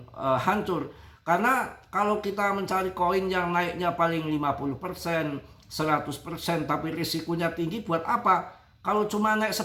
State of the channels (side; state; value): both; identical; correlation 1.00